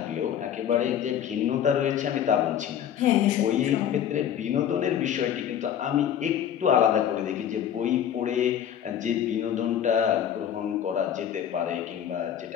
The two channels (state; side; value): quieter; right; 9.6 dB